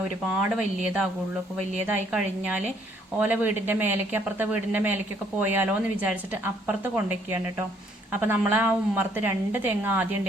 ഒരുപാട് വലിയതാകുള്ളൂ. അപ്പോൾ വലിയതായി കഴിഞ്ഞാൽ ഓല വീടിൻ്റെ മേലേക്ക് അപ്പുറത്തെ വീടിൻ്റെ മേലേക്കൊക്കെ പോയാലോ എന്ന് വിചാരിച്ചിട്ട് അപ്പുറത്ത് കൊണ്ടുവയ്ക്കുകയാണ് കേട്ടോ. അപ്പോൾ നമ്മൾ ആ ഉമ്മർത്ത് 2 തെങ്ങ് ആദ്യം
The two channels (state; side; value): normal; both; correlation 0.65